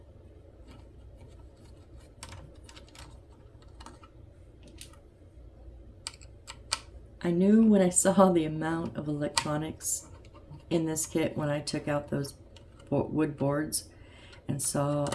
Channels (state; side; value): identical; both; correlation 1.00